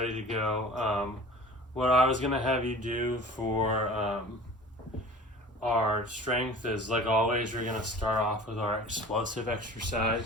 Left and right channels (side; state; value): both; normal; correlation 0.42